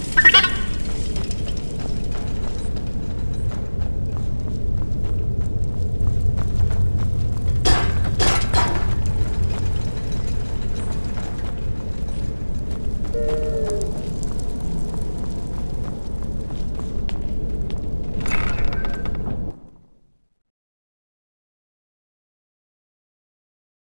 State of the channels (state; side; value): inverted; both; correlation -1.00